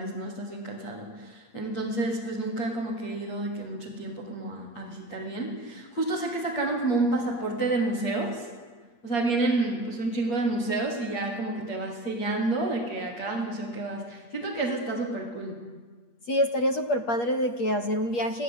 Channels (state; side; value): late; right; 8.5 ms